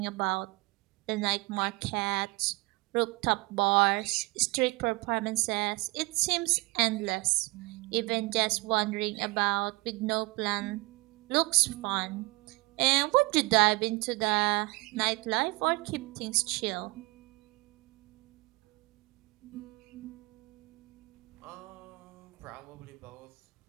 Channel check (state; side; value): quieter; left; 24.7 dB